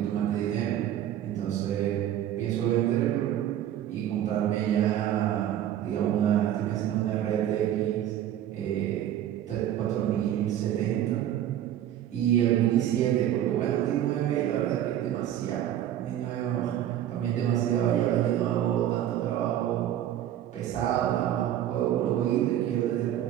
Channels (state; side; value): quieter; left; 11.5 dB